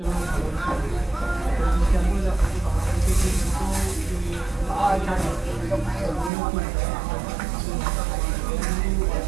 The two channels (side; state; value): left; drops out; at 6.3 s